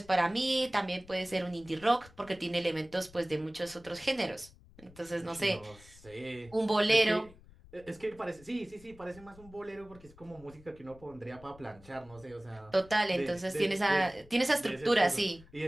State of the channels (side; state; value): left; noise; rumble, 23 dB below the sound